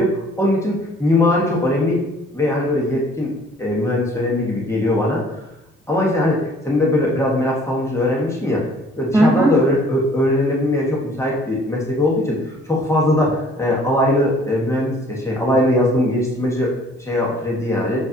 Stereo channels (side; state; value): both; normal; correlation 0.56